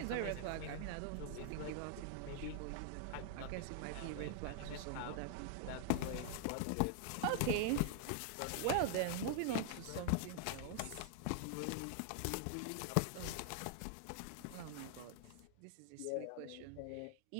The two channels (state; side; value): different; both; correlation 0.00